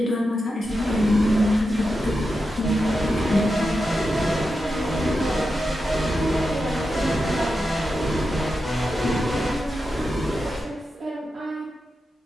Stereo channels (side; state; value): both; normal; correlation 0.89